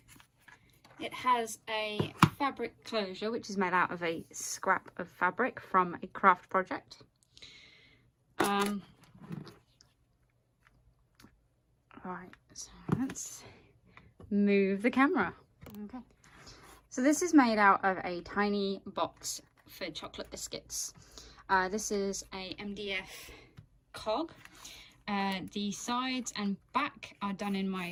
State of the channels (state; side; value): identical; both; correlation 1.00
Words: It has a fabric closure which is made out of a scrap of fabric from a craft project. Right, so let's move the camera. Okay, so this is made out of a tiny box for chocolate biscuits. This is a MDF cog. The sides and back are done in